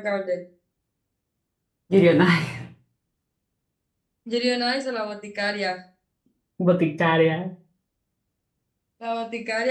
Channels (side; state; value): both; identical; correlation 1.00